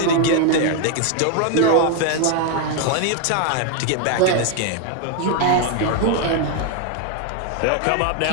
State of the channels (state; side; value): different; both; correlation 0.01